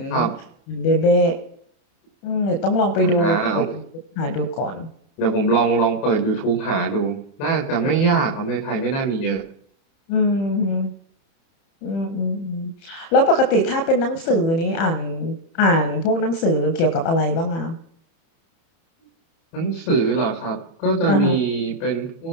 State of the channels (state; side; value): late; right; 30 ms